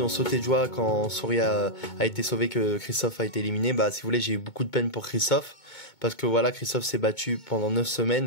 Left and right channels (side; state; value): right; late; 2.2 ms